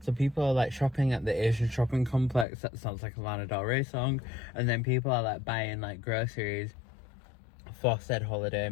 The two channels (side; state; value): right; drops out; at 2.5 s